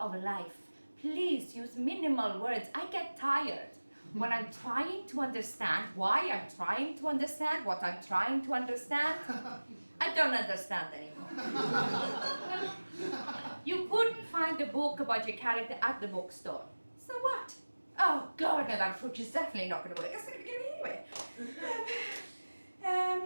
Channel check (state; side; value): inverted; both; correlation -1.00